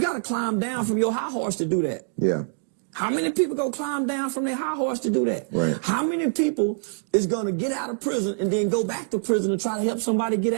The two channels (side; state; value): left; silent; digital silence